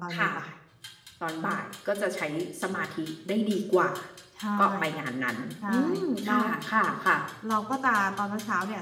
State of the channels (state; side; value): identical; both; correlation 1.00